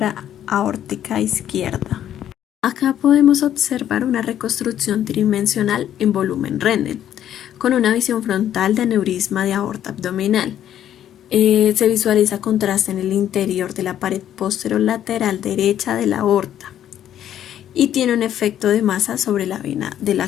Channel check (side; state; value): right; quieter; 10.9 dB